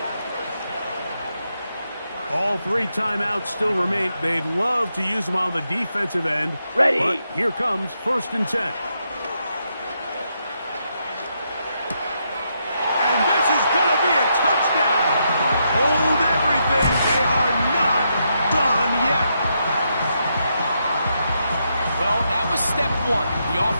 All 3 timeouts still remain. They'd love to use them on the defensive end. Ready. But here comes 1st and 10. And this is going to be a touchdown. Hold everything. They are not done yet. Well, that was step 1. The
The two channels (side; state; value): both; inverted; correlation -0.81